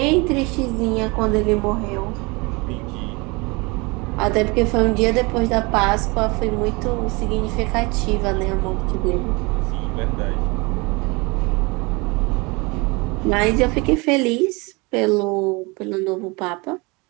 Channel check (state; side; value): quieter; left; 26.8 dB